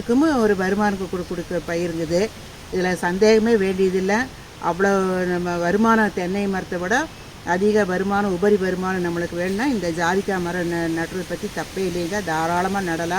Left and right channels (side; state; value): both; identical; correlation 1.00